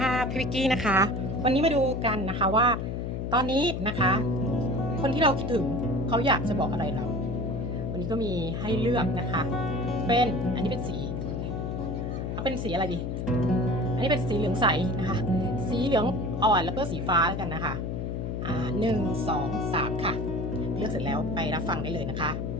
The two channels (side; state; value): left; noise; hum, 3 dB below the sound